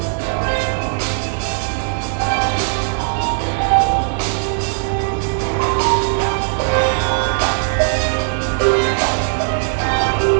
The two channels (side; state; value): left; silent; 67 dB below the other